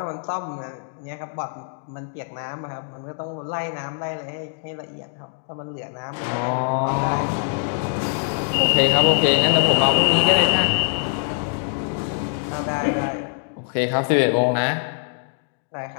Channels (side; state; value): right; silent; digital silence